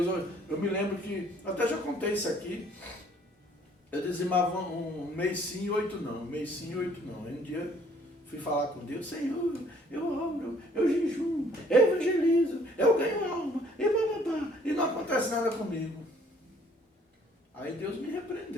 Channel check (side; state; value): both; normal; correlation 0.60